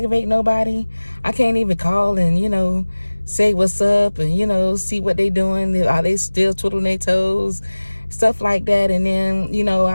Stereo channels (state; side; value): inverted; both; correlation -1.00